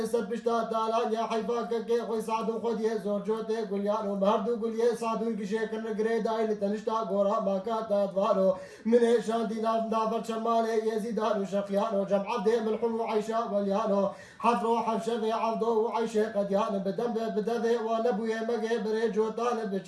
بشتا تالان يا حيفا كي خوي سعدو خديه زور جوتي قليانو مهردو قليه سعدو كشي كن قريداي لتنشتا غورا ماكاتا دوارو من شاندي نافر شمالي يزيدانو شقيانو جمع عبدي ملحم وعيشا وليانو حفرو حفشفي عبدو وعيشي قديان بدم بدفي ونبوي مقي بريجوتان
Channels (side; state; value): both; identical; correlation 1.00